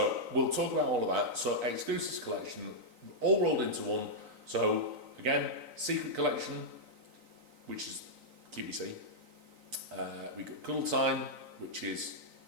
we'll talk about all of that. So Exclusives Collection, all rolled into one. So again, Secret Collection, which is QVC. We got Cuddle Time, which is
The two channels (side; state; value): left; late; 3.9 ms